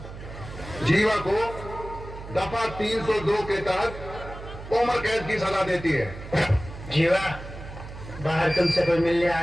जीवा को दफा 302 के तहत उम्र कैद की सजा देती है। जीवा, बाहर तुमसे कोई मिलने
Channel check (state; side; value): noise; right; hum, 12 dB below the sound